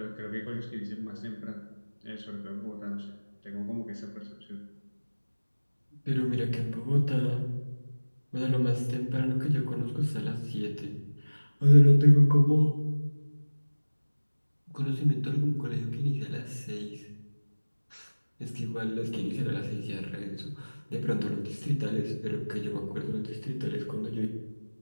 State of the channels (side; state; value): both; inverted; correlation -1.00